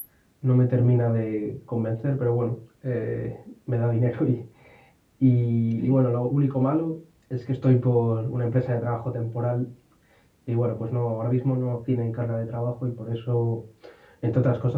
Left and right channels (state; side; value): identical; both; correlation 1.00